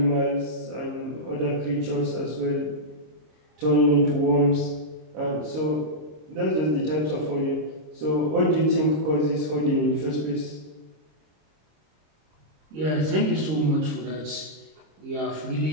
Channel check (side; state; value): left; late; 26 ms